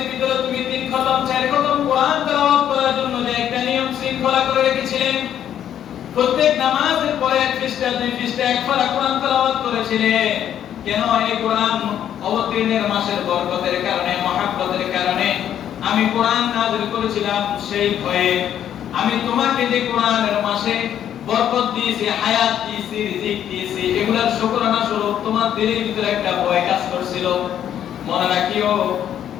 ভিতরে তুমি তিন খতম, চার খতম কোরআন তেলাওয়াত করার জন্য যে একটা নিয়ম শৃঙ্খলা করে রেখেছিলেন, প্রত্যেক নামাজের পরে এক পৃষ্ঠা, দুই পৃষ্ঠা, এক পারা কোরআন তেলাওয়াত করেছিলেন। কেন? এই কোরআন অবতীর্ণের মাসের বরকতের কারণে, মহব্বতের কারণে আমি কোরআন নাযিল করেছিলাম। সেই ভয়ে আমি তোমাকে যে কোরআনের মাসে বরকত দিয়েছি, হায়াত দিয়েছি, রিজিক দিয়েছি, এগুলোর শুকরানা স্বরূপ তোমার দিলের ভিতরে একটা ভয় কাজ করছিল। মনে রাখিও,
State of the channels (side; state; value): right; quieter; 10.2 dB